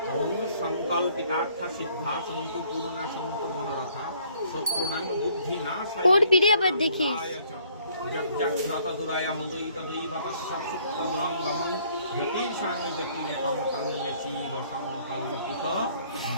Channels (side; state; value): both; inverted; correlation -0.62